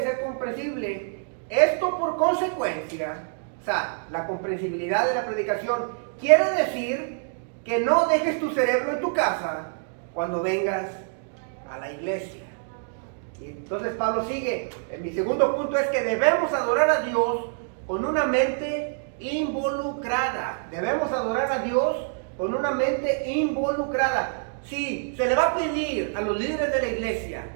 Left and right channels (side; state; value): left; silent; digital silence